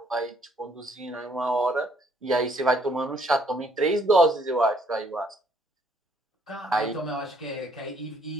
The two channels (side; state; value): both; normal; correlation 0.66